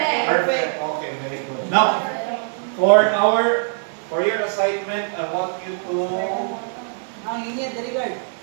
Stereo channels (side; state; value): left; silent; 58 dB below the other